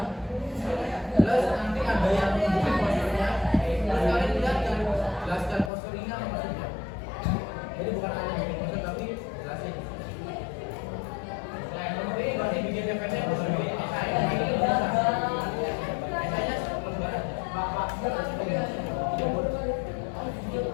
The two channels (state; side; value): drops out; right; at 5.7 s